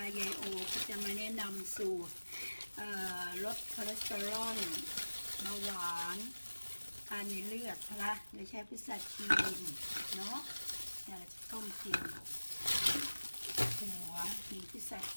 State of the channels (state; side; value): inverted; both; correlation -1.00